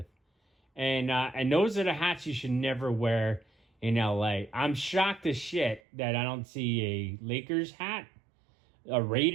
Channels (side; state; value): left; drops out; at 5.8 s